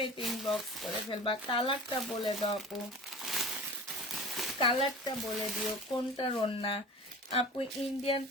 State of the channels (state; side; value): normal; both; correlation 0.37